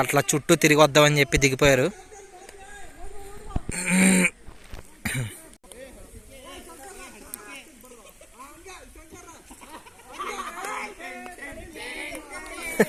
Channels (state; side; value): identical; both; correlation 1.00